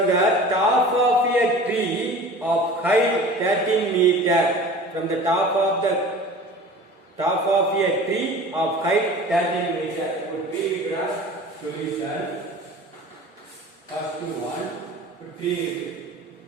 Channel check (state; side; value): normal; both; correlation 0.41